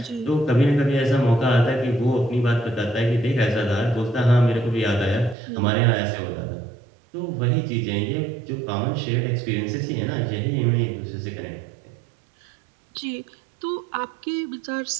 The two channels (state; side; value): drops out; left; at 5.4 s